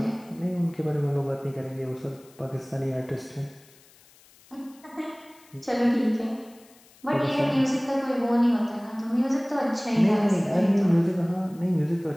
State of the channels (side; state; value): left; noise; hiss, 27 dB below the sound